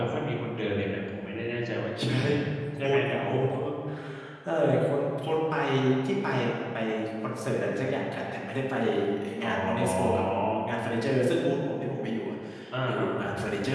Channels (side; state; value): both; identical; correlation 1.00